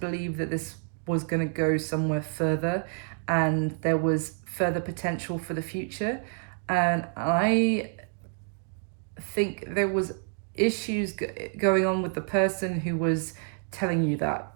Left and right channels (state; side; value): silent; left; 55 dB below the other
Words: that this was going to go somewhere further and there was further potential for the future. And I think there was issues going on with the person who was telling you that,